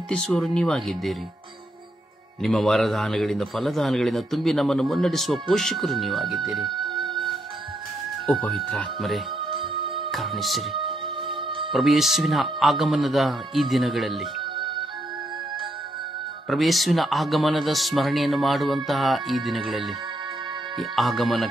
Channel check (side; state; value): both; normal; correlation 0.78